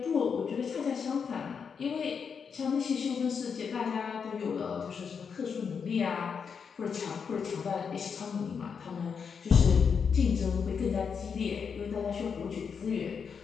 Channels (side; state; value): right; quieter; 6.3 dB